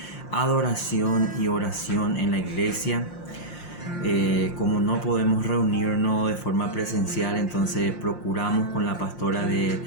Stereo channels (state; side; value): late; right; 5.7 ms